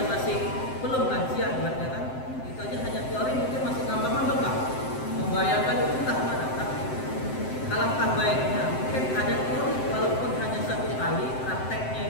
masih belum lansia ibaratnya kan, itu aja hanya teori mungkin masih ngambang-ngambang Pak. Membayangkan itu entah mana Pak. Alangkah baiknya mungkin ada teori walaupun hanya satu kali prakteknya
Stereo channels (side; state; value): right; late; 7.7 ms